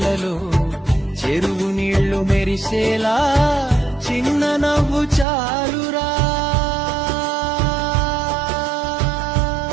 చెరువు నీళ్లు మెరిసేలా చిన్న నవ్వు చాలురా.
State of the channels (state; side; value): drops out; left; at 5.2 s